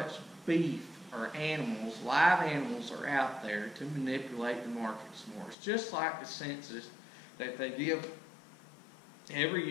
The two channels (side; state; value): right; drops out; at 5.6 s